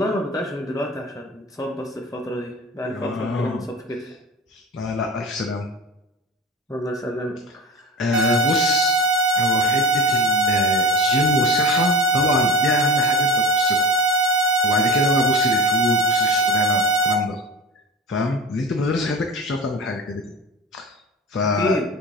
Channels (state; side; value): normal; both; correlation 0.31